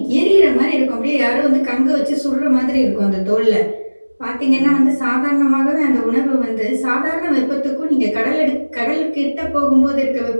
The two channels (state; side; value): inverted; both; correlation -1.00